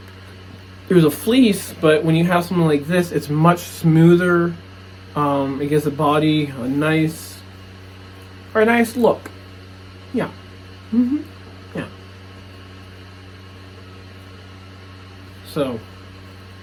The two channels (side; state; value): both; identical; correlation 1.00